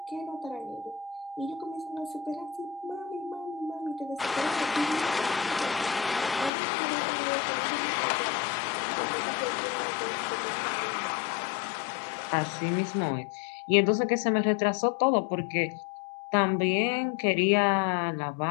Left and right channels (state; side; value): drops out; right; at 6.5 s